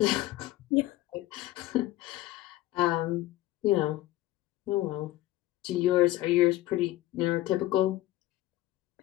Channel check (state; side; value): quieter; right; 16.0 dB